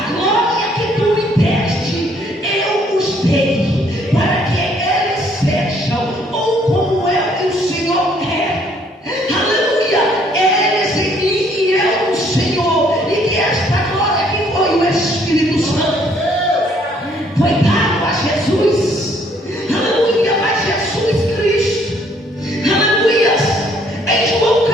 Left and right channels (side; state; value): both; normal; correlation 0.64